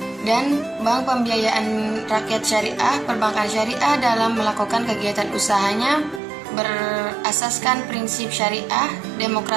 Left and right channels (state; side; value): drops out; left; at 6.2 s